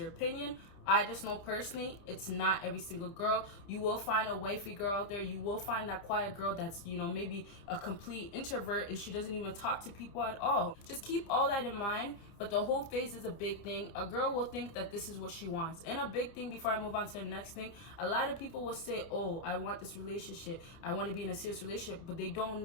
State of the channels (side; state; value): right; late; 30 ms